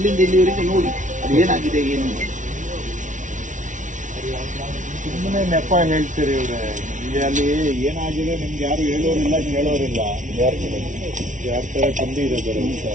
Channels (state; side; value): late; left; 0.37 ms